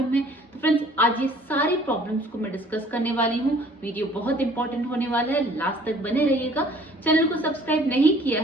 है। तो फ्रेंड्स आज ये सारी प्रॉब्लम्स को मैं डिस्कस करने वाली हूँ। वीडियो बहुत इंपॉर्टेंट होने वाला है, लास्ट तक बने रहिएगा। चैनल को सब्सक्राइब नहीं किया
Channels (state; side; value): normal; both; correlation 0.54